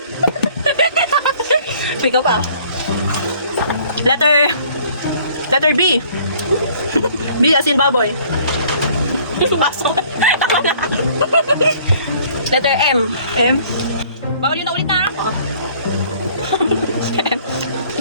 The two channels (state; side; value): inverted; both; correlation -0.56